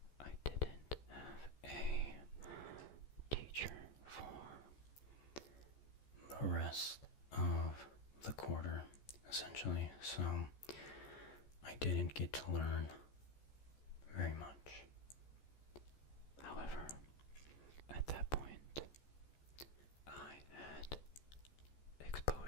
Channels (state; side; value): late; right; 14 ms